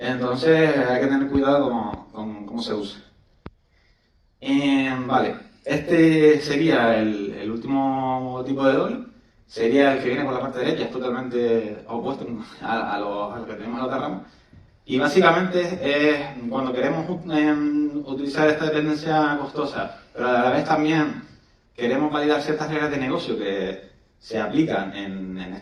hay que tener cuidado con cómo se usa. Vale, este sería el último tipo de doble. Sería el que viene por la parte derecha, es totalmente opuesto a lo que tenemos en la otra rama. Y básicamente es cuando queremos utilizar esta dependencia costosa, pero a la vez también queremos validar ciertas reglas de negocio que se aplican en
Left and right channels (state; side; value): identical; both; correlation 1.00